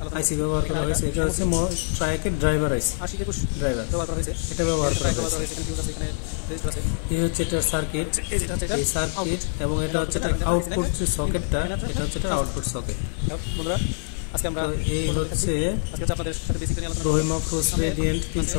আইসি ব্যবহার করা হয়েছে। এটা হচ্ছে ট্রায়াকের ড্রাইভার আইসি, এটা ব্যবহার করা হয়েছে। এই হচ্ছে এটার সার্কিট, এই সার্কিট, এবং এটা হচ্ছে এটার আউটপুট যে সকেটটা, এটা হচ্ছে এটার আউটপুট সকেট। তো এই হচ্ছে Rahim Afroz radiant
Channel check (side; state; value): right; silent; digital silence